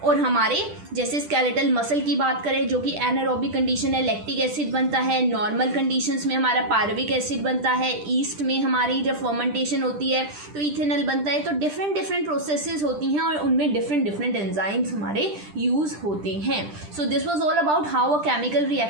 और हमारे जैसे स्केलेटल मसल की बात करें जो कि एनारोबिक कंडीशन है, लैक्टिक एसिड बनता है। नॉर्मल कंडीशंस में हमारा पायरुविक एसिड बनता है। ईस्ट में हमारी जब फर्मेंटेशन होती है तो इथेनॉल बनता है। तो डिफरेंट प्रोसेसेस होती हैं और उनमें डिफरेंट एंजाइम्स हमारे यूज होते हैं। So this was all about how a chemical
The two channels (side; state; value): left; late; 10 ms